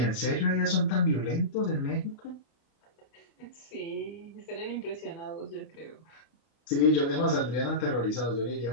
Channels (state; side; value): late; right; 32 ms